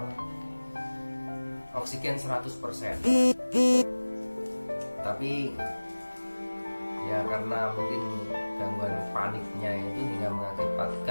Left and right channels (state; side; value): inverted; both; correlation -1.00